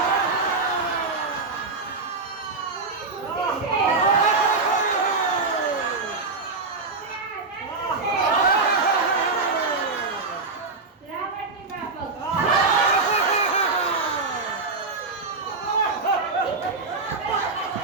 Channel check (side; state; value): left; quieter; 3.9 dB